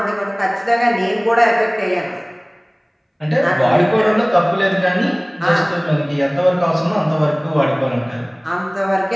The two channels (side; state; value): both; identical; correlation 1.00